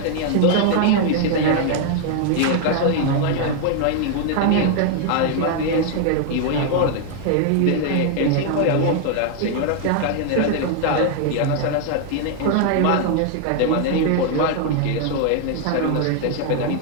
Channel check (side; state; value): both; different; correlation 0.00